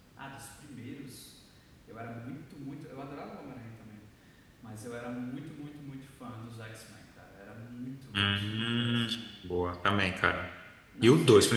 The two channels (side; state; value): both; identical; correlation 1.00